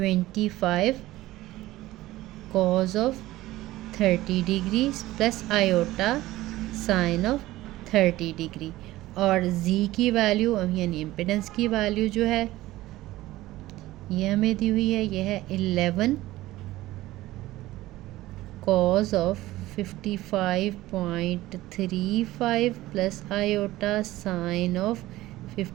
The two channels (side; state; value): left; quieter; 16.8 dB